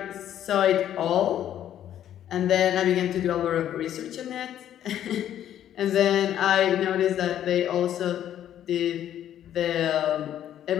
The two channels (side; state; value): right; quieter; 11.0 dB